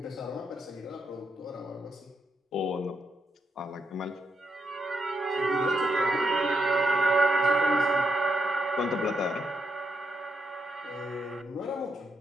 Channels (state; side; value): normal; both; correlation 0.81